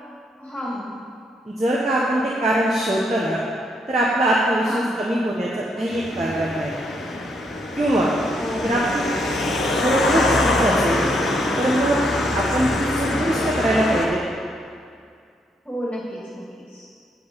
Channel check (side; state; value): both; normal; correlation 0.74